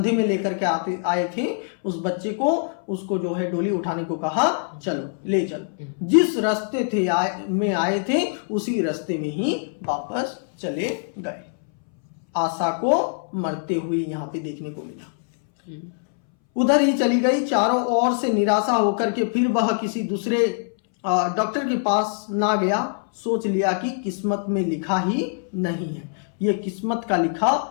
में लेकर के आए थे उस बच्चे को, उसको जो है डोली उठाने को कहा, चलो ले चलो। जिस रास्ते थे आए थे उसी रास्ते में ही वापस चले गए। आशा को मरते हुए यहाँ पे देखने को मिला। उधर ही चली गई। चारों ओर से निराशा होकर के फिर वह किसी दूसरे डॉक्टर के पास ना गया। सोच लिया कि किस्मत में लिखा ही नहीं है। ये किस्मत का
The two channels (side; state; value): right; silent; 63 dB below the other